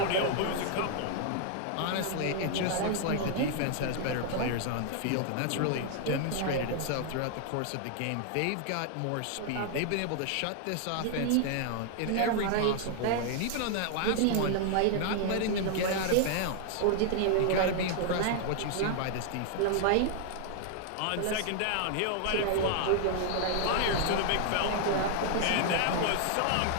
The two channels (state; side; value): different; both; correlation 0.00